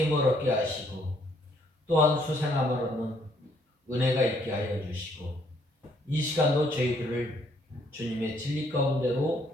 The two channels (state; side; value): normal; both; correlation 0.67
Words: 힘을 얻게 하시고 또한 수생함을 얻는 은혜가 있게 하여 주시고 이 시간도 저희들을 주님의 진리